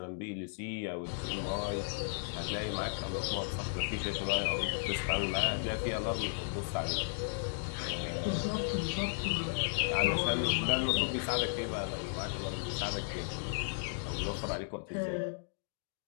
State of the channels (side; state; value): right; silent; digital silence